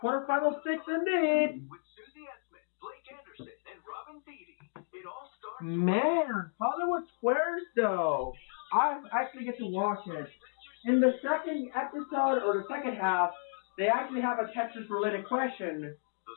quarterfinal six indeed. With Susie Essman, Blake Anderson, and Robin Thede. It all starts. Man, Hollywood Squares though. I actually get to watch it. In the second episode or the second half, they actually have a Tetris related question.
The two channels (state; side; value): silent; right; digital silence